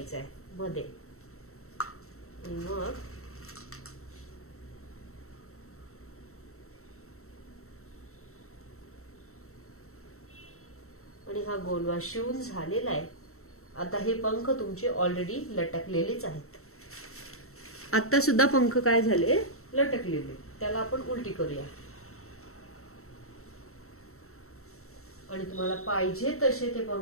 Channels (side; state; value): right; late; 0.63 ms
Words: आहे मध्ये. मग आणि हा गोलवा शिवून झालेला आहे. आता हे पंख तुमचे ऑलरेडी लटकलेलेच आहेत. आता सुद्धा पंख काय झाले? लटकलेले. त्याला आपण उलटी करूया. आणि तुम्हाला पाहिजे तसे ते